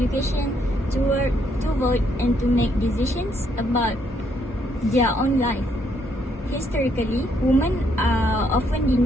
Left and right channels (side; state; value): both; normal; correlation 0.72